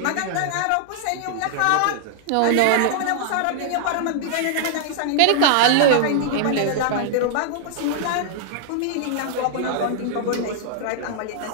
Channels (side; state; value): both; different; correlation -0.01